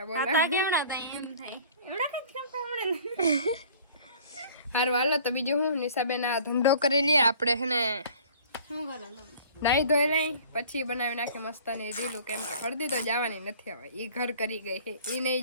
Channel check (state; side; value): inverted; both; correlation -0.49